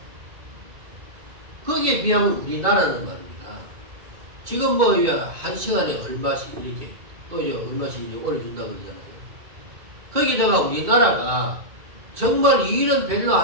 거기에 비하면 우리나라는 말입니다. 지금 뭐 한 시간에 얼마씩 이렇게 또 이제 얼마씩 이제 올려준다고 그러잖아요. 거기다가 우리나라가 정말 일은 별로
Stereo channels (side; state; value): left; late; 2.5 ms